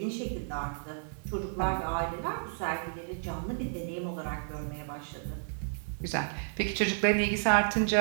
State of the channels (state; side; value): silent; left; digital silence